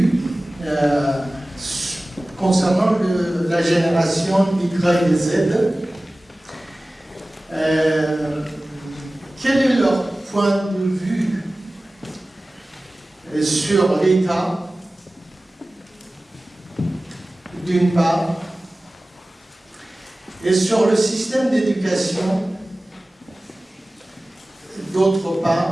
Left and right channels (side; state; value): both; normal; correlation 0.97